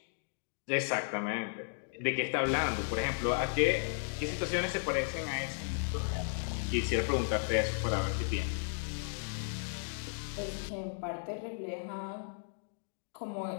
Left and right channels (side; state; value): right; silent; digital silence